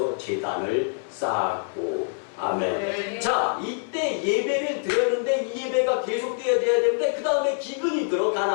제단을 쌓았고 아멘. 네. 자 이때 예배를 드렸는데 이 예배가 계속되어야 되는데 그 다음에 기근이 들어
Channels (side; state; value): right; silent; 62 dB below the other